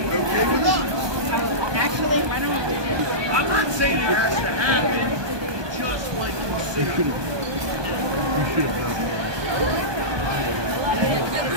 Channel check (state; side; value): late; left; 1.2 ms